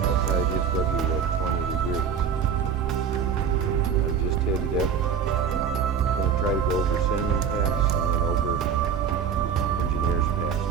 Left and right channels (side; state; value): left; quieter; 7.0 dB